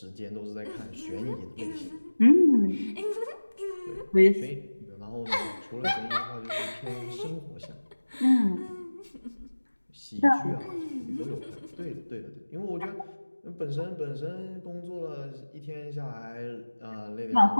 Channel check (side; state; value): both; inverted; correlation -1.00